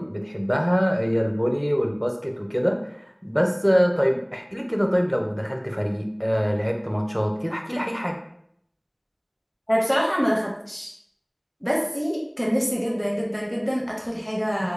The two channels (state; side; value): identical; both; correlation 1.00